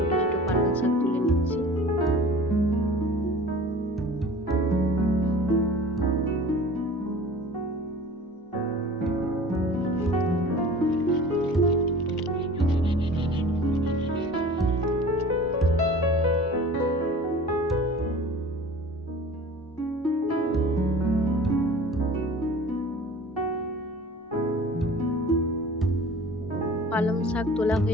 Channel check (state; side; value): normal; both; correlation 0.42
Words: ছোট পালং শাক তুলে নিচ্ছি। পালং শাক তোলা